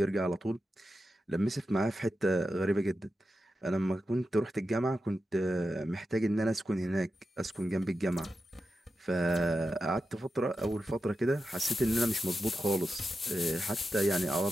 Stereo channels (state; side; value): normal; both; correlation 0.90